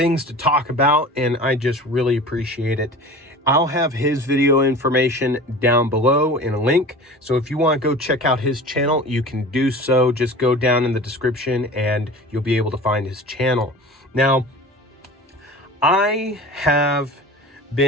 to talk about, and I just really appreciate it. I'll have his video information down below in a link. So if you want to go check out his channel, you can do so. Just go down in the description and you'll be able to find his channel. Now, I have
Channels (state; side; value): normal; both; correlation 0.38